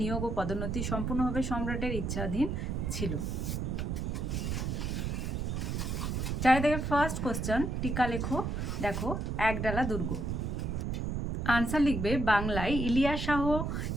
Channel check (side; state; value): right; noise; rumble, 1 dB below the sound